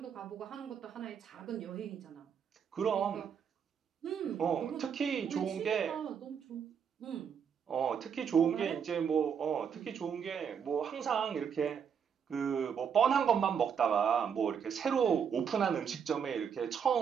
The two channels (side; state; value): left; quieter; 7.3 dB